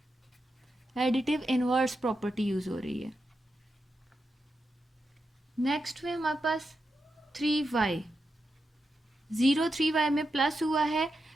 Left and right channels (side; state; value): both; normal; correlation 0.87